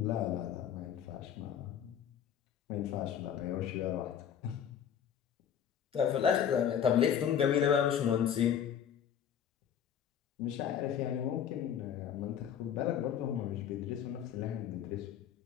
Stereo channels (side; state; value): right; quieter; 8.9 dB